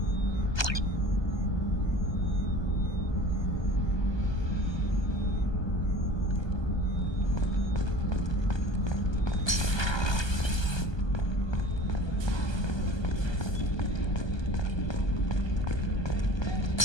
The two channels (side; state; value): right; late; 1.2 ms